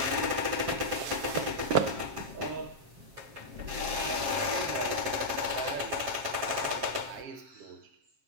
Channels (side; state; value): left; late; 7.4 ms